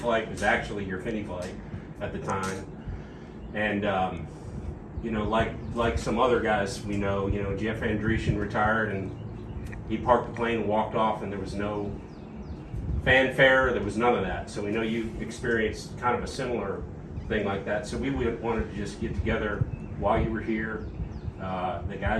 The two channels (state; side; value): identical; both; correlation 1.00